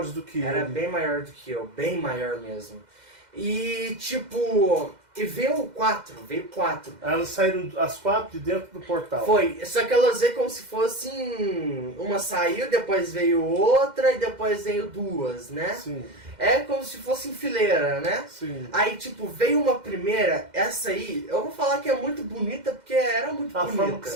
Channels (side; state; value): left; late; 2.1 ms